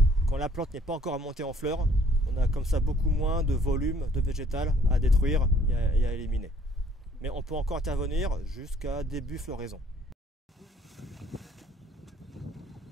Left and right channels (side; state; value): both; normal; correlation 0.60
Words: quand la plante n'est pas encore montée en fleurs. On a comme ça beaucoup moins de volume de végétal à détruire et à éliminer. Mais on peut encore intervenir jusqu'à début floraison.